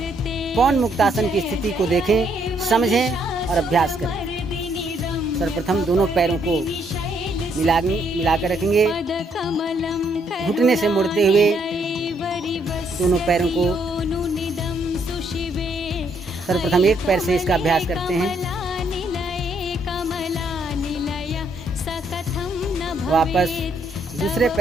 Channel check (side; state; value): both; normal; correlation 0.71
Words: पवन मुक्तासन की स्थिति को देखें, समझें और अभ्यास करें। सर्वप्रथम दोनों पैरों को मिलाकर रखेंगे। घुटने से मुड़ते हुए दोनों पैरों को सर्वप्रथम एक पैर से इसका अभ्यास करते हैं। वापस दूसरे